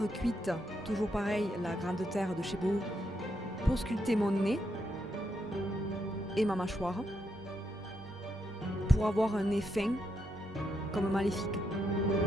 cuite, toujours pareil, la grande terre de chez Boho, pour sculpter mon nez et ma mâchoire, pour avoir un nez fin, comme maléfique.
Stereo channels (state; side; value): normal; both; correlation 0.79